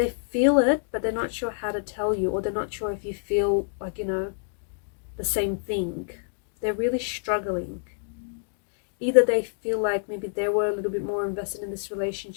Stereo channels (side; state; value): right; silent; digital silence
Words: feel it, but they're not sure how to tell you, or they're not sure if you feel like, you know, the same thing. They're really struggling. Either they feel like maybe they were a little bit more invested in this